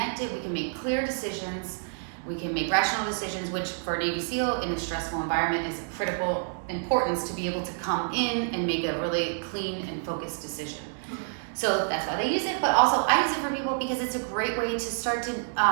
we can make clear decisions, we can make rational decisions, which for a Navy SEAL in a stressful environment is critical importance to be able to come in and make a really clean and focused decision. So that's why they use it, but also I use it for people because it's a great way to start to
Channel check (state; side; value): silent; left; digital silence